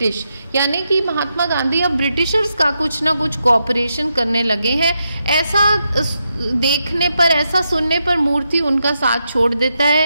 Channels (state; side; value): inverted; both; correlation -0.84